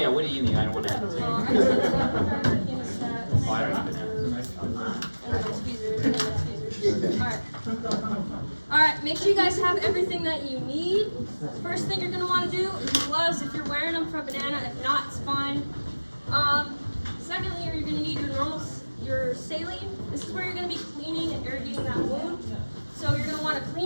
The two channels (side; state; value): both; inverted; correlation -1.00